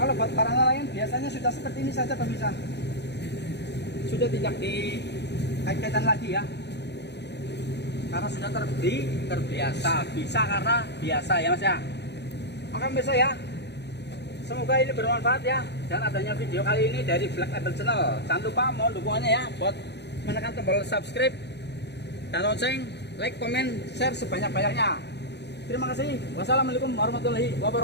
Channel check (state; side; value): late; right; 0.50 ms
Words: buat barang lain biasanya sudah seperti ini saja pemirsa. Sudah tidak dikaitkan lagi ya. Karena sudah terbiasa. Bisa karena biasa ya Mas ya. Oke pemirsa ya. Semoga ini bermanfaat ya, dan adanya video kali ini dari Black Label Channel. Jangan lupa mohon dukungannya ya buat menekan tombol subscribe dan lonceng, like, komen, share sebanyak-banyaknya. Terima kasih. Wassalamualaikum warahmatullahi